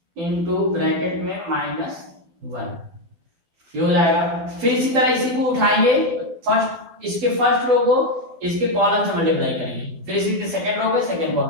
इंटू ब्रैकेट में -1, ये हो जाएगा। फिर इसी तरह इसी को उठाएंगे, फर्स्ट इसके फर्स्ट रो को इसके कॉलम से मल्टीप्लाई करेंगे, फिर इसी के सेकंड रो को सेकंड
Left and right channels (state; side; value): late; left; 12 ms